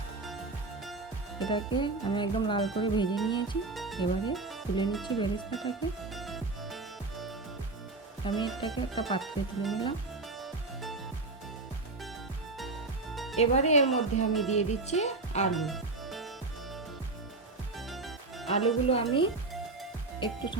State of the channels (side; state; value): left; quieter; 3.4 dB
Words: এটাকে আমি একদম লাল করে ভেজে নিয়েছি। এবারে তুলে নিচ্ছি বেরেস্তাটাকে। আমি এটাকে একটা পাত্রে তুলে নিলাম। এবারে এর মধ্যে আমি দিয়ে দিচ্ছি আলুগুলো আমি একটু